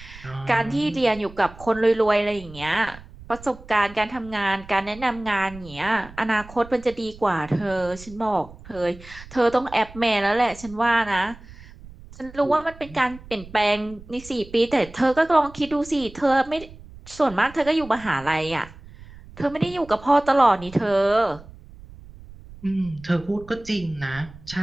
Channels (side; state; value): right; noise; rumble, 19 dB below the sound